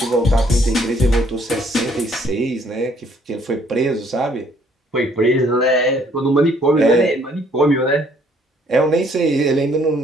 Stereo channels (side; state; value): both; normal; correlation 0.63